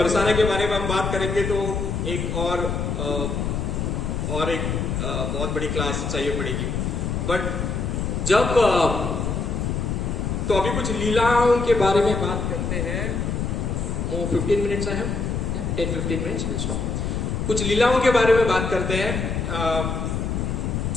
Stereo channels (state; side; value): noise; left; rumble, 1 dB below the sound